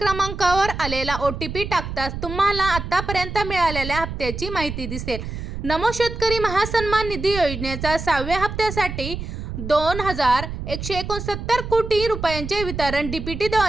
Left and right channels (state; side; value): noise; right; rumble, 7 dB below the sound